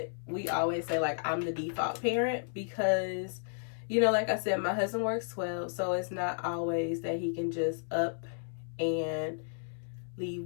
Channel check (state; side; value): silent; right; 56 dB below the other